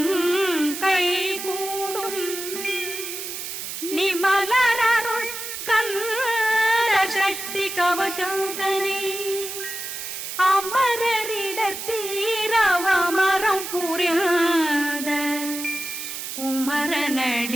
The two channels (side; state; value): right; noise; hiss, 7 dB below the sound